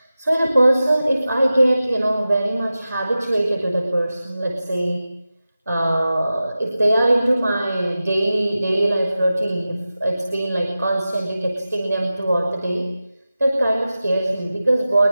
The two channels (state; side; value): inverted; both; correlation -0.94